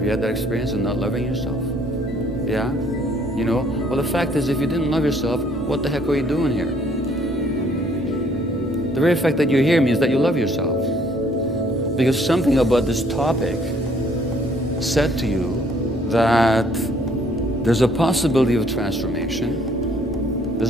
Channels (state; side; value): normal; both; correlation 0.62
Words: you had that experience of not loving yourself? Yeah? You know? Well, the fact is, if you didn't love yourself, what the heck are you doing here? The very fact that you're here means that you love yourself. Because something about this topic said to you that there's a possibility of transformation.